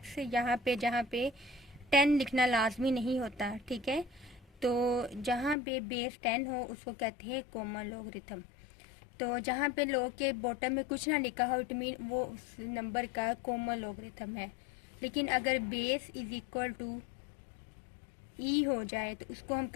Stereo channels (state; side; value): drops out; right; at 5.6 s